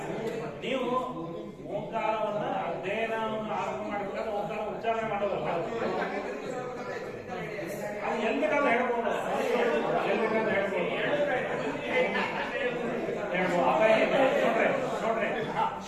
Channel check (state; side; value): identical; both; correlation 1.00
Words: ನೀವು ಓಂಕಾರವನ್ನ ಅಧ್ಯಯನವನ್ನು ಆರಂಭ ಮಾಡಬೇಕಾದ್ರೆ ಓಂಕಾರ ಉಚ್ಚಾರಣೆ ಮಾಡೋದಲ್ಲ. ಅದು ಎಲ್ಲಿ ಬೇಕಾದ್ರೆ ಹೇಳ್ಬೋದು, ನೋಡ್ರಿ.